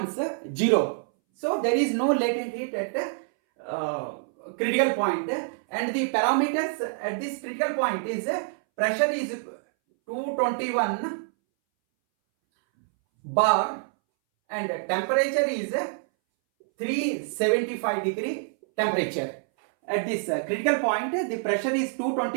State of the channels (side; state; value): left; silent; 61 dB below the other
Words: 0, so there is no latent heat at critical point, and the parameters at this critical point is pressure is 221 bar and temperature is 375 degree temperature. At this critical point the pressure is